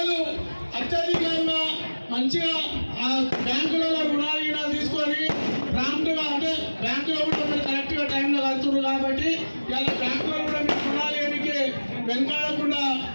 అత్యధికంగా మంచిగా ఆ బ్యాంకులలో రుణాలు తీసుకొని ప్రాంప్ట్గా, అంటే బ్యాంకులో కూడా మీరు కరెక్ట్గా టైంలో కడుతున్నారు కాబట్టి ఇలా బ్యాంకులో కూడా మీకు రుణాలు ఏనికి వెనకాడకుండా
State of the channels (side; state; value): both; inverted; correlation -1.00